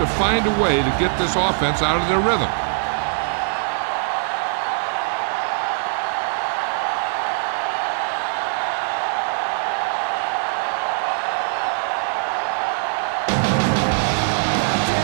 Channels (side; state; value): left; silent; digital silence